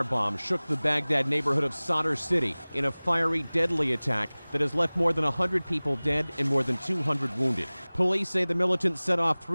bomb shook the Baghdad neighborhood of Sadr City in a fiery, deadly attack that has left more than 100 people dead and more than 200 wounded. Police say the militants set off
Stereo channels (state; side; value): inverted; both; correlation -1.00